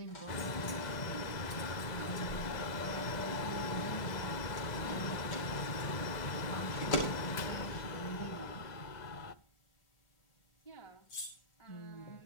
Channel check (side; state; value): right; late; 2.0 ms